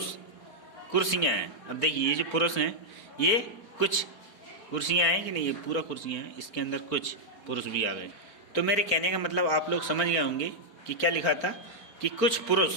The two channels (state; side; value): late; right; 4.5 ms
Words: कुर्सियाँ हैं। अब देखिए, ये जो पुरुष हैं, ये कुछ कुर्सियाँ हैं कि नहीं? ये पूरा कुर्सियाँ हैं, इसके अंदर कुछ पुरुष भी आ गए। तो मेरे कहने का मतलब आप लोग समझ गए होंगे कि क्या लिखा था, कि कुछ